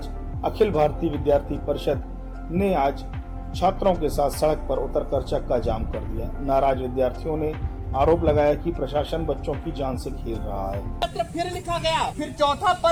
अखिल भारतीय विद्यार्थी परिषद ने आज छात्रों के साथ सड़क पर उतरकर चक्का जाम कर दिया। नाराज विद्यार्थियों ने आरोप लगाया कि प्रशासन बच्चों की जान से खेल रहा है। पत्र फिर लिखा गया, फिर चौथा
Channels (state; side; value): identical; both; correlation 1.00